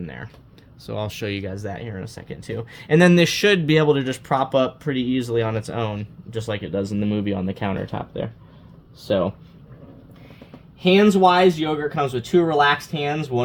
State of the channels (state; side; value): identical; both; correlation 1.00